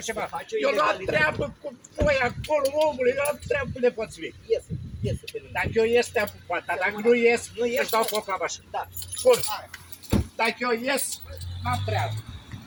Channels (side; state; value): both; identical; correlation 1.00